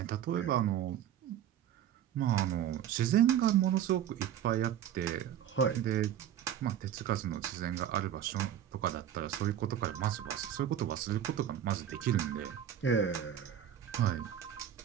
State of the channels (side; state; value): left; quieter; 10.2 dB